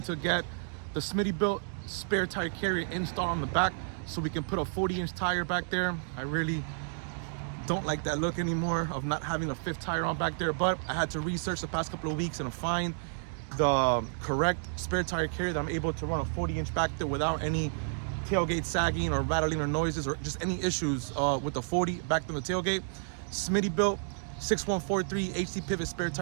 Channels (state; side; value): silent; left; digital silence